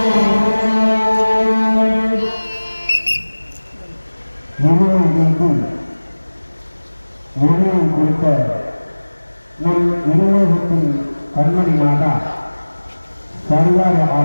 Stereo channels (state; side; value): inverted; both; correlation -1.00